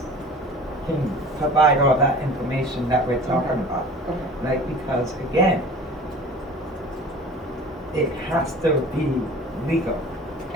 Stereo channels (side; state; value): both; normal; correlation 0.43